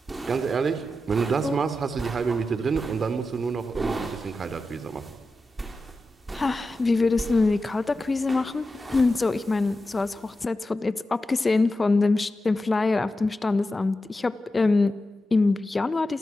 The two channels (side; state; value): both; normal; correlation 0.91